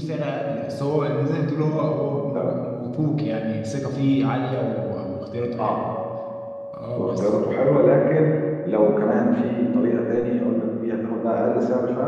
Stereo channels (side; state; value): both; identical; correlation 1.00